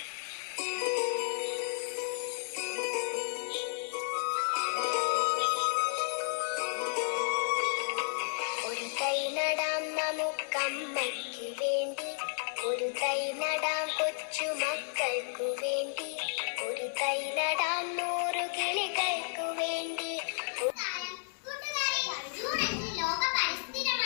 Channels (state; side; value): silent; right; digital silence